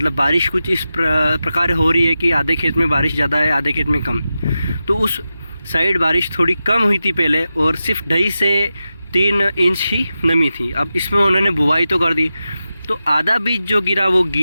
बारिश कुछ इस प्रकार हो रही है कि आधे खेत में बारिश ज़्यादा है आधे खेत में कम। तो उस साइड बारिश थोड़ी कम हुई थी पहले और सिर्फ 2.5 से 3 इंच ही नमी थी। अब इसमें उन्होंने बुआई तो कर दी, तो आधा बीज जो गिरा वो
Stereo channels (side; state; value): both; inverted; correlation -0.92